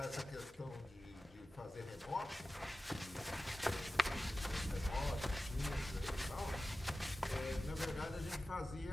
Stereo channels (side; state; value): both; normal; correlation 0.95